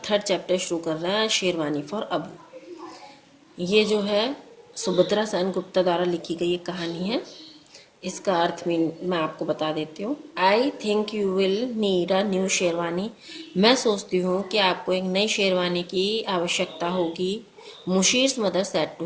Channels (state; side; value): identical; both; correlation 1.00